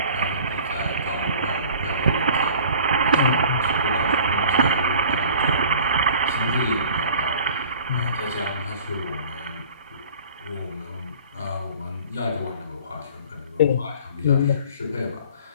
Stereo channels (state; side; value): inverted; both; correlation -0.47